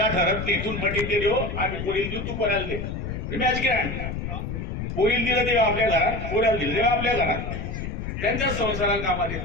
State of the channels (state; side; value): noise; left; rumble, 5 dB below the sound